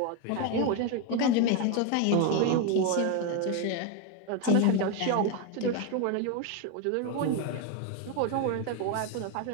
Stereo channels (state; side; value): different; both; correlation 0.02